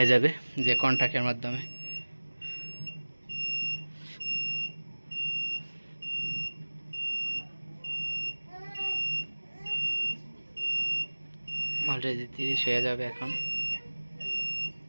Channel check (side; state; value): both; inverted; correlation -1.00